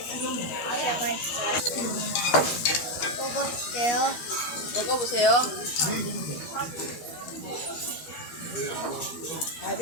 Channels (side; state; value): right; late; 12 ms